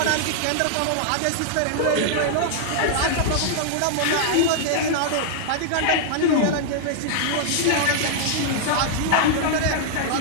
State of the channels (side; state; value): both; different; correlation -0.01